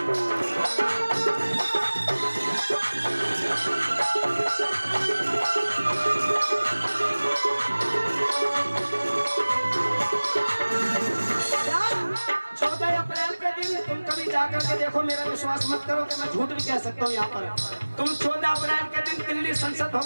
जाकर के देखो, मेरा विश्वास मत करो कि मैं झूठ भी कह सकता हूँ। यहाँ पर तुम 14 अप्रैल के दिन दिल्ली संसद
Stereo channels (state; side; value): inverted; both; correlation -1.00